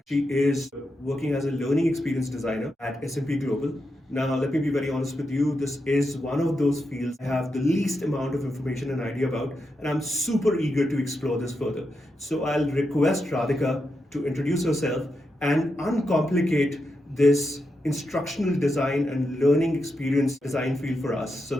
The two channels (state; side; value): normal; both; correlation 0.86